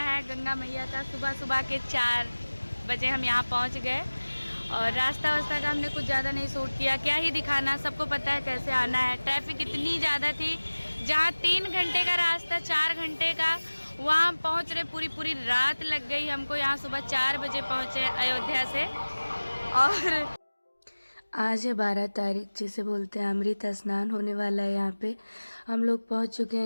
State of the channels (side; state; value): both; inverted; correlation -1.00